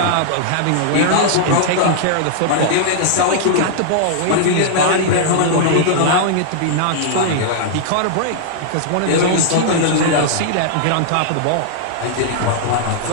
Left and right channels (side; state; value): both; different; correlation -0.01